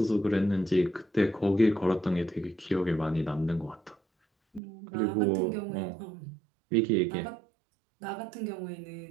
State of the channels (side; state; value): left; drops out; at 4.6 s